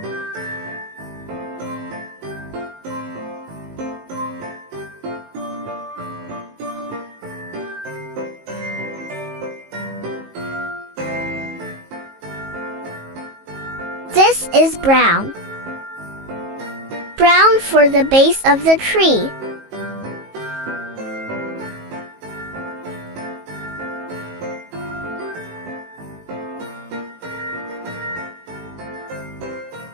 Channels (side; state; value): left; late; 19 ms